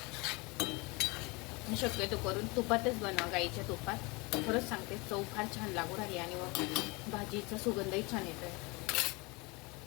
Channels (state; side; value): quieter; right; 26.9 dB